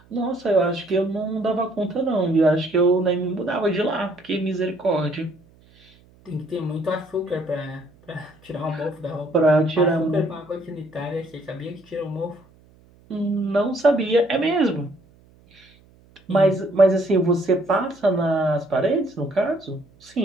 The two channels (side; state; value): right; noise; hum, 29 dB below the sound